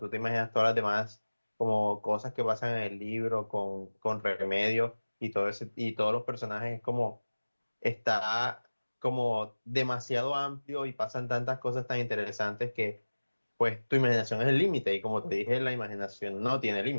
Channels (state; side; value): inverted; both; correlation -1.00